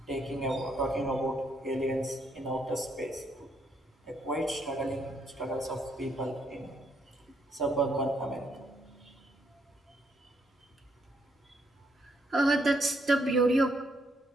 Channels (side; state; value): both; normal; correlation 0.73